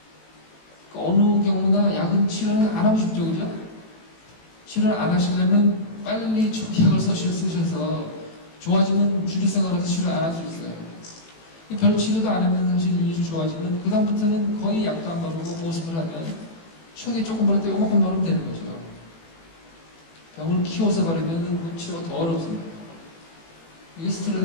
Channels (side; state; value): right; late; 18 ms